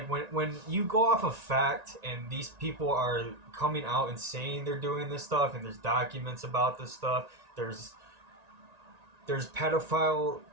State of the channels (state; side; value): late; left; 1.9 ms